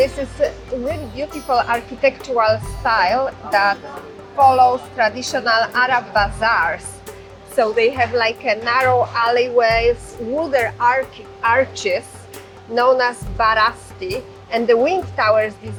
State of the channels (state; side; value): identical; both; correlation 1.00